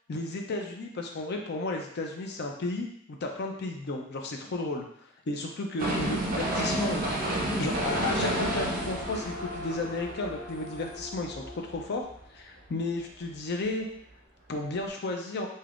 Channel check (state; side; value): normal; both; correlation 0.25